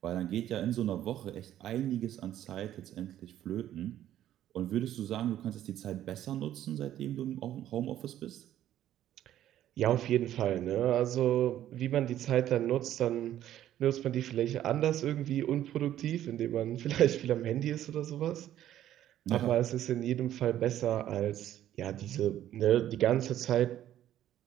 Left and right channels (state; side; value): quieter; left; 12.1 dB